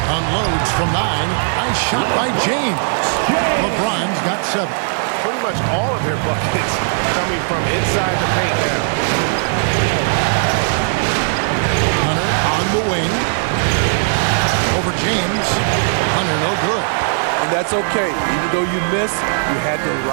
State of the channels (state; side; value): silent; left; digital silence